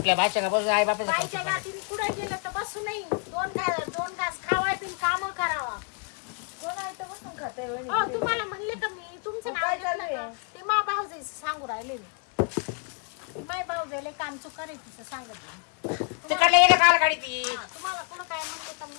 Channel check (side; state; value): right; quieter; 38.0 dB